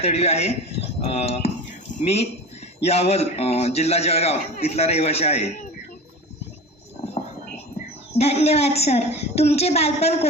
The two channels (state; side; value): normal; both; correlation 0.33